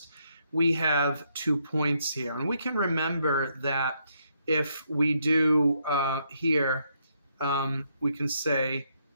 we have 2 points here. And we can remember that if we do here, we can say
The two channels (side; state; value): both; inverted; correlation -0.75